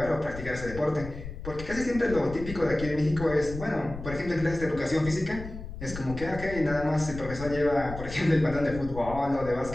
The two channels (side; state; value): left; noise; rumble, 11 dB below the sound